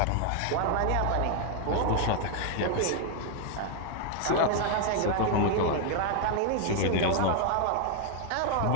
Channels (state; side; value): different; both; correlation 0.00